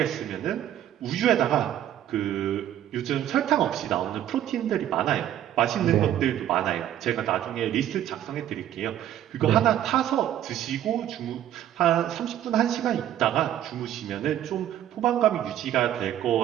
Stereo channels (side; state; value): left; quieter; 11.5 dB